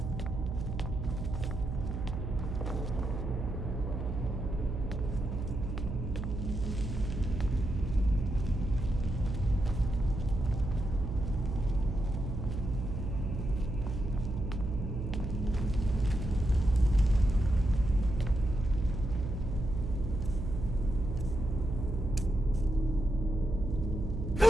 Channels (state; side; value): noise; right; hum, 4 dB below the sound